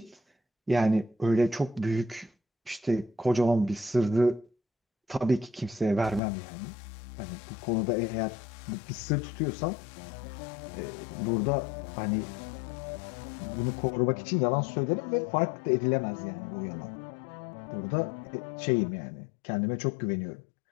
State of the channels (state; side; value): drops out; right; at 6.2 s